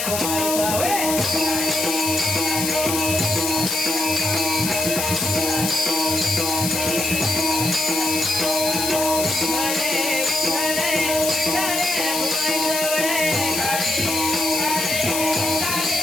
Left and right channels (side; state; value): left; noise; hiss, 1 dB below the sound